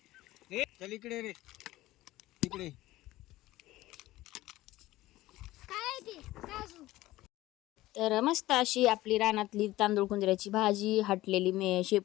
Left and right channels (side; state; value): right; quieter; 17.0 dB